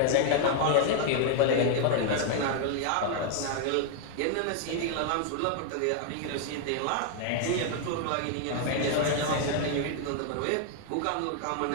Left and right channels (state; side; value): different; both; correlation 0.00